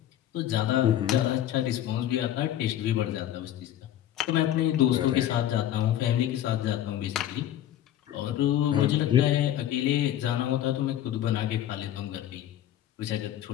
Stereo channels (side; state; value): right; quieter; 11.9 dB